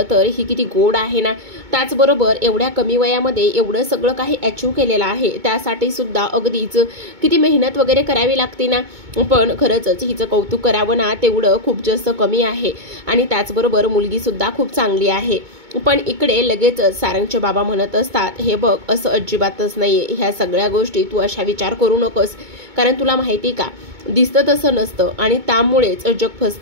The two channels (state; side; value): late; left; 2.2 ms